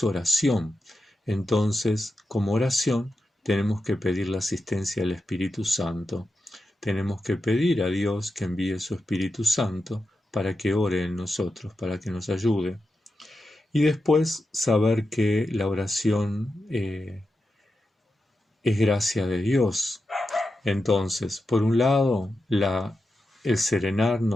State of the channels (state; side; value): normal; both; correlation 0.89